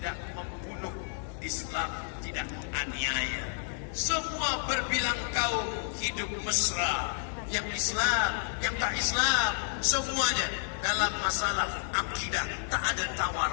membunuh, Islam tidak menganiaya. Semua berbilang kaum hidup mesra, yang Islam, yang tak Islam, semuanya dalam masalah akidah tak ada tawar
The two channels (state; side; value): silent; right; 57 dB below the other